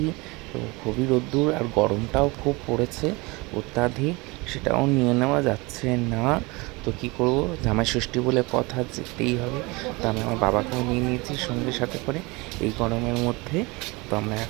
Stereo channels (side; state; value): left; quieter; 25.1 dB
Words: তো খুবই রোদ্দুর আর গরমটাও খুব পড়েছে অত্যাধিক, সেটাও নিয়ে নেওয়া যাচ্ছে না। তো কী করব, জামাই ষষ্ঠী বলে কথা, যেতেই হবে। তো আমি আমার বাবাকেও নিয়ে নিয়েছি সঙ্গে সাথে করে এই গরমের মধ্যে। তো আমরা